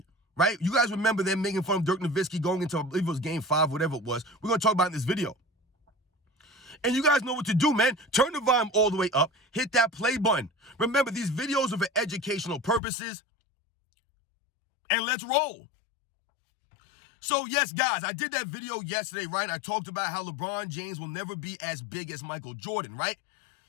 right? You guys remember them making fun of Dirk Nowitzki going into, I believe it was Game 5, whatever it was. We're going to talk about it in this video. And you guys know what to do, man. Turn the volume all the way up. Hit that play button. Remember, these videos are for educational purposes. And let's roll. So, yes, guys, I did that video yesterday, right? I talked about how LeBron James will never be as big as Michael Jordan, right?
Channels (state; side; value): drops out; right; at 12.8 s